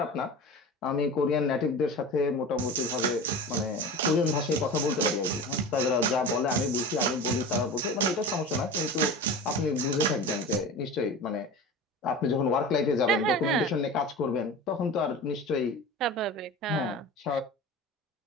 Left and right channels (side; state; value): both; normal; correlation 0.32